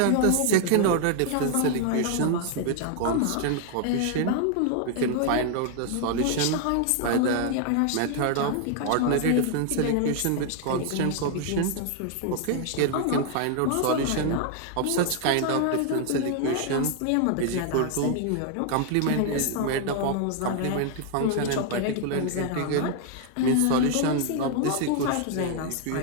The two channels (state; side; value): different; both; correlation 0.00